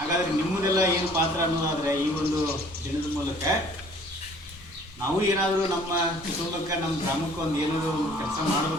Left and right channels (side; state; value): both; normal; correlation 0.54